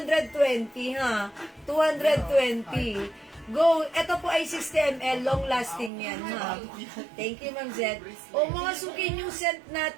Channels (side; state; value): left; drops out; at 5.9 s